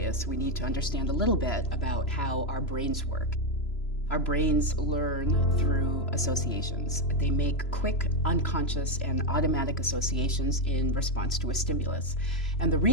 we need to understand a little bit about how our brains work. Our brains learn through associations. They make quick, unconscious, and automatic associations in response to a stimulus. And the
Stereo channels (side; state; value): right; late; 3.0 ms